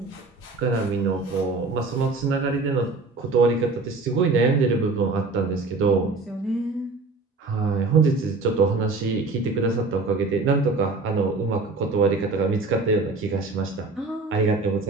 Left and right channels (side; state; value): left; quieter; 3.7 dB